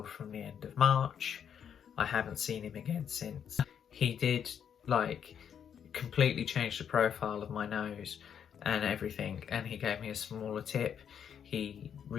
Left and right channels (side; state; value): right; quieter; 8.2 dB